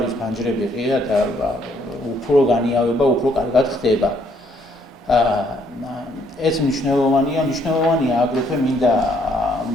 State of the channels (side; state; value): both; normal; correlation 0.68